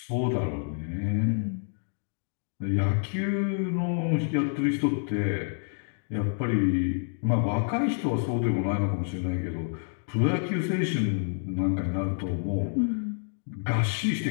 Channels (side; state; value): right; silent; 59 dB below the other